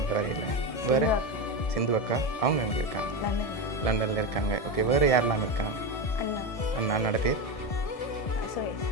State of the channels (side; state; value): right; late; 1.6 ms